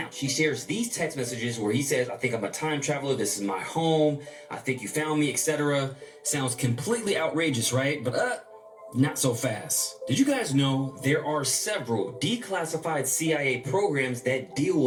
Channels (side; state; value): both; identical; correlation 1.00